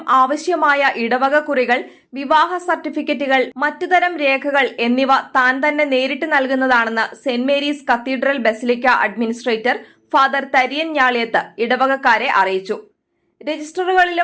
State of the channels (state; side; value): identical; both; correlation 1.00